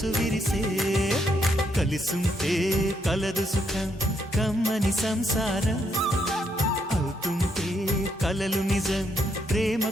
విరిసే కలిసుంటే కలదు సుఖం కమ్మని సంసారం అవుతుంటే కలలు నిజం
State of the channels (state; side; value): normal; both; correlation 0.76